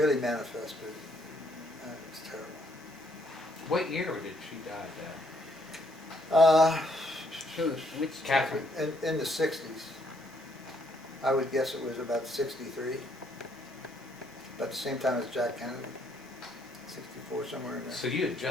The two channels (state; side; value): normal; both; correlation 0.70